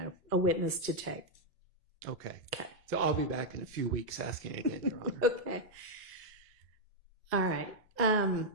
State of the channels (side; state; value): both; normal; correlation -0.02